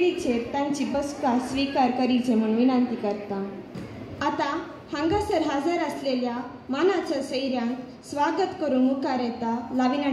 तांची बसका स्वीकार करीचे म्हूण विनंती करता। आता हांगासर हजर असलेल्या मानाच्या सैऱ्यांक स्वागत करून मुखार येता लाविना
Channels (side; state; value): both; identical; correlation 1.00